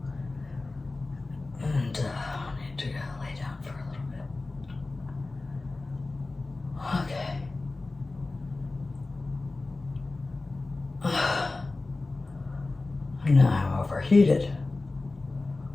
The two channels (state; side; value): quieter; right; 3.3 dB